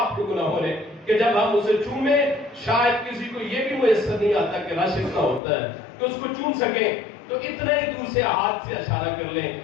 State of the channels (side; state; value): right; drops out; at 5.4 s